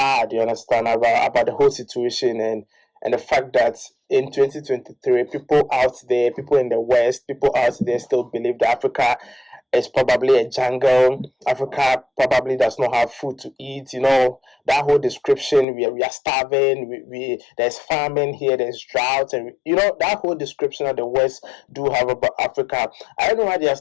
you understand, about the whole situation, and the fact that in 2023, people in the West, people out there still believe that Africa is probably a jungle. Africa probably does not have food to eat. That whole description, we are starving, we there's famine here, there's drought, and that whole description that the West do have about Africa. I don't know why they are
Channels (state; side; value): drops out; right; at 15.7 s